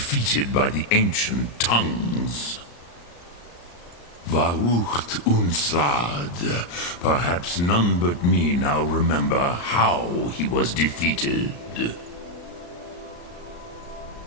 by the ancient tongues. Varucht Unslad. Perhaps none but me now remember how he was defeated.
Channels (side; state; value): right; late; 34 ms